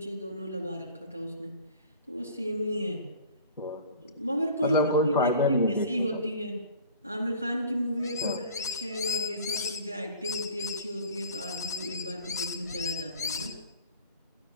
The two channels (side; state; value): both; inverted; correlation -0.44